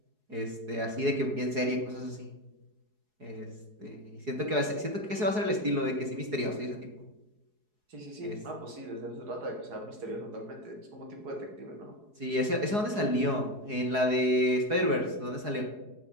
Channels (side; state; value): left; late; 4.8 ms